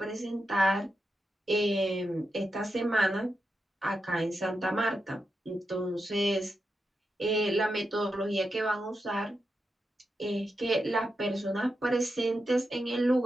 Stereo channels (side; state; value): both; normal; correlation 0.87